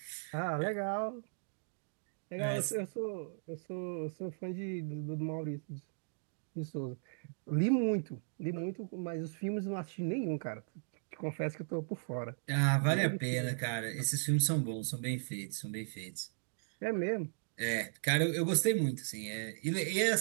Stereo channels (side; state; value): left; silent; digital silence